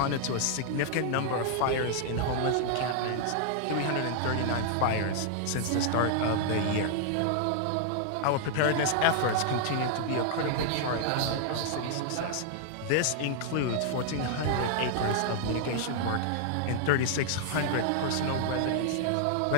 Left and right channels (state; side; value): different; both; correlation 0.00